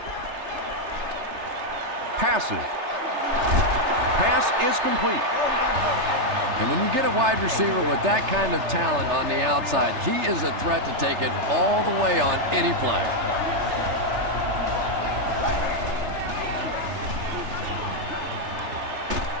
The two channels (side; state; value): left; late; 3.3 ms